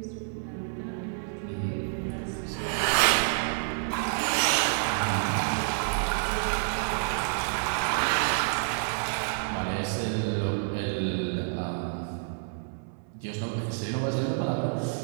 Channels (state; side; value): silent; left; 59 dB below the other